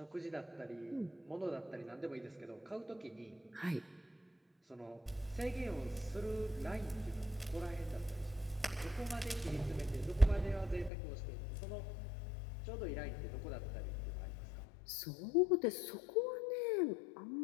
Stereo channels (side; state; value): right; drops out; at 10.9 s